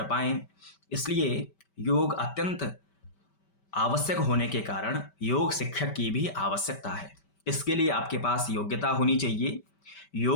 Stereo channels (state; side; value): late; right; 5.2 ms